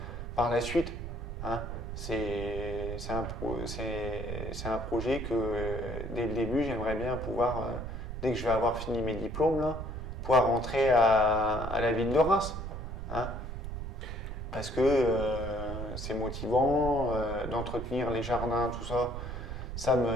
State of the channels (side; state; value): right; noise; rumble, 6 dB below the sound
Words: par la suite. Hein. C'est un projet que dès le début j'aimerais bien pouvoir, dès que je vais avoir fini mes diplômes, là, pouvoir rentrer à la ville de Reims. Hein. Parce que c'est motivant d'entretenir les jardins, tout ça. Ça